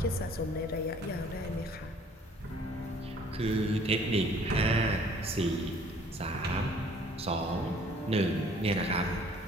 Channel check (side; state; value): both; normal; correlation 0.56